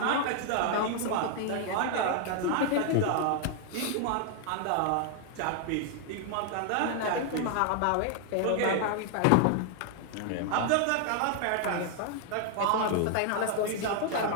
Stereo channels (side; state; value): both; different; correlation 0.00